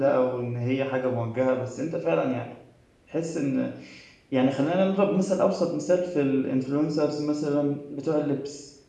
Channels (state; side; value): identical; both; correlation 1.00